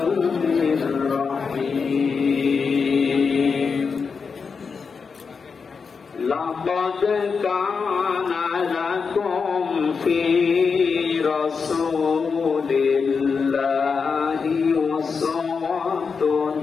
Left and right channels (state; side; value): quieter; right; 5.4 dB